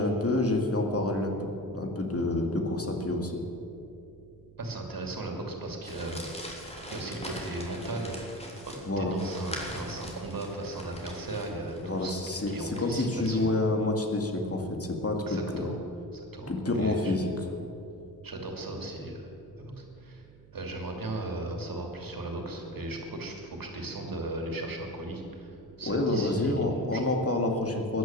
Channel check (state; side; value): noise; right; hum, 22 dB below the sound